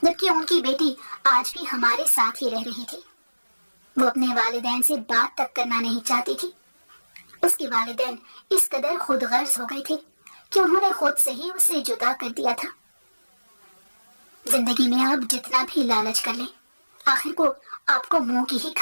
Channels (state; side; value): inverted; both; correlation -1.00